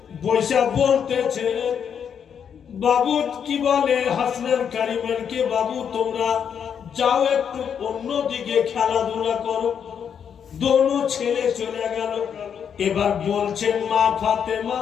বৈশা বলতেছে, বাবু কি বলে হাসনান কারিমানকে, বাবু তোমরা যাও একটু অন্যদিকে খেলাধুলা করো। দোনো ছেলে চলে গেল। এবার বলছেন মা ফাতেমা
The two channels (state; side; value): quieter; right; 7.8 dB